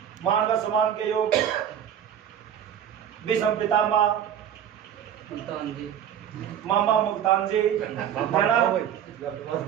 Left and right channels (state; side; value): quieter; left; 9.5 dB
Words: मानव सम्मान के योग विषम पितामह मुल्तान जी, मामा मुल्तान जी,